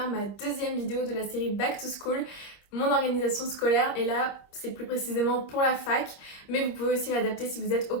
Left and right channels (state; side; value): late; right; 25 ms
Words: ma deuxième vidéo de la série Back to School, mon organisation scolaire. Et là, c'est plus précisément pour la fac, mais vous pouvez aussi l'adapter si vous êtes au